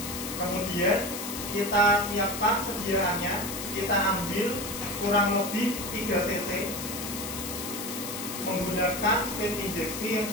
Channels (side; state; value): left; noise; hiss, 7 dB below the sound